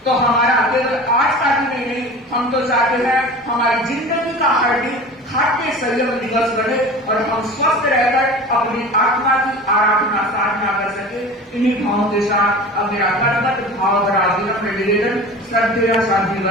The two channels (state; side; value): normal; both; correlation 0.37